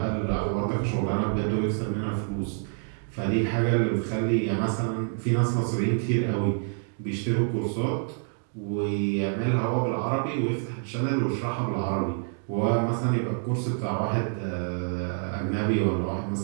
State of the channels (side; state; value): left; silent; 56 dB below the other